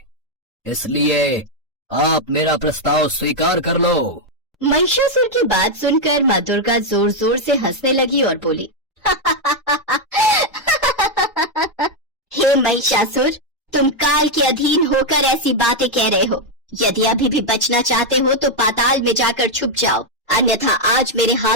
इसलिए आप मेरा प्रस्ताव स्वीकार कर लो। महिषासुर की बात सुनकर माँ दुर्गा जोर जोर से हंसने लगी और बोली, हे महिषासुर, तुम काल के अधीन होकर ऐसी बातें कह रहे हो। यदि अभी भी बचना चाहते हो तो पाताल में जाकर छुप जाओ, अन्यथा आज मेरे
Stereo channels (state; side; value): normal; both; correlation 0.01